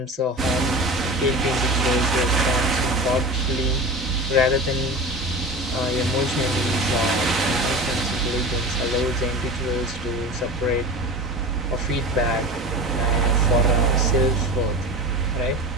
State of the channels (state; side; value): normal; both; correlation 0.31